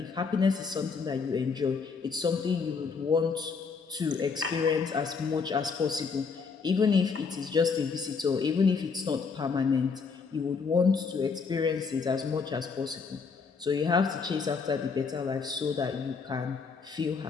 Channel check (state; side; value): quieter; right; 5.2 dB